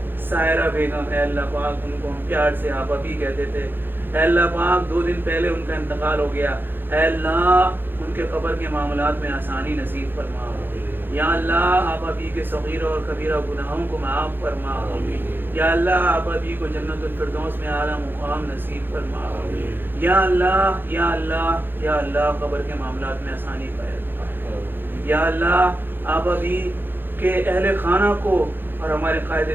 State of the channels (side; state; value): left; late; 0.098 ms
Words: سائرہ بیگم، اے اللہ پاک ان کو ہم پیار سے آپ ابھی کہتے تھے. اے اللہ پاک 2 دن پہلے ان کا انتقال ہو گیا. اے اللہ ان کے قبر کے معاملات میں آسانی نصیب فرما. یا اللہ آپ ابھی کے صغیرہ اور کبیرہ گناہوں کو معاف فرما. یا اللہ آپ ابھی کو جنت الفردوس میں اعلیٰ مقام نصیب فرما. یا اللہ یا اللہ یا اللہ قبر کے معاملات میں آسانی پیدا. یا اللہ آپ ابھی کے اہل خانہ کو اور ہمارے قائد